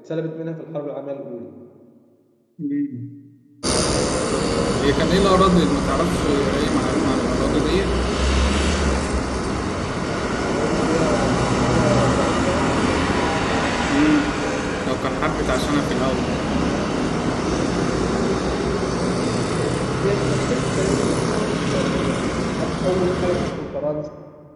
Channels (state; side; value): identical; both; correlation 1.00